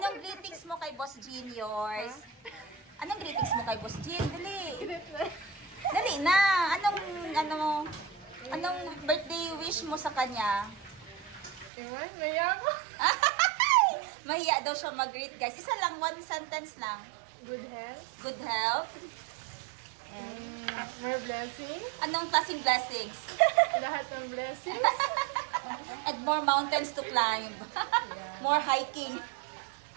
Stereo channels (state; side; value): drops out; left; at 11.7 s